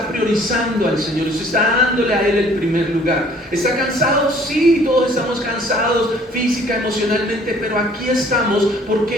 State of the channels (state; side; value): normal; both; correlation 0.56